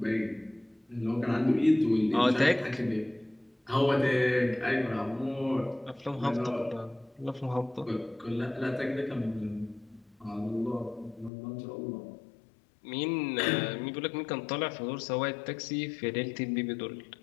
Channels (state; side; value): drops out; right; at 11.3 s